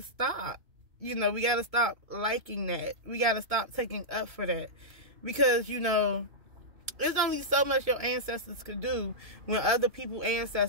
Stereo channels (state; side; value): late; left; 2.4 ms